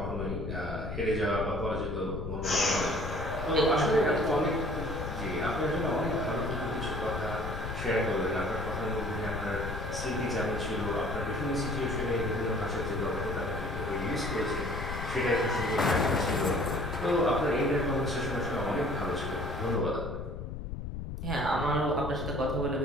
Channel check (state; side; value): noise; left; rumble, 6 dB below the sound